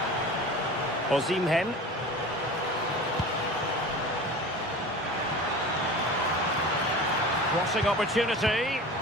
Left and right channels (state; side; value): normal; both; correlation 0.35